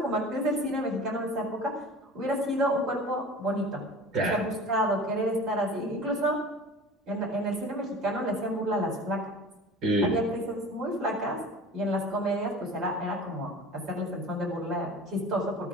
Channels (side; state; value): both; normal; correlation 0.40